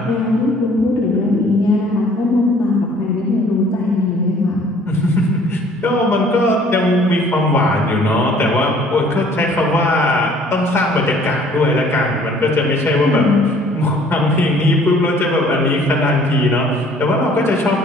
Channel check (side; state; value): both; normal; correlation 0.56